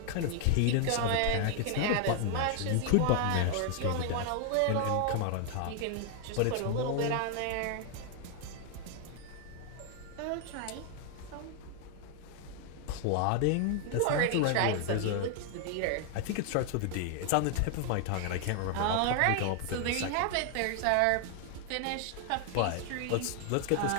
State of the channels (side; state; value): both; different; correlation 0.00